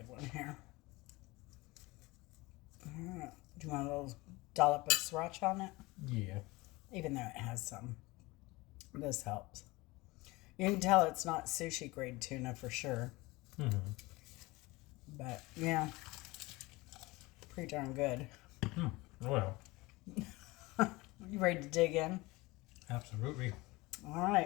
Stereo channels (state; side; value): quieter; right; 22.1 dB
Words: one here. All right. Do you want a little dollop of sriracha on it? Yeah. Even though it has some. This helps. You can tell it's not sushi grade tuna for sure. Mm-hmm. But, yeah. Pretty darn good. Well. You ready to dig in? Absolutely. All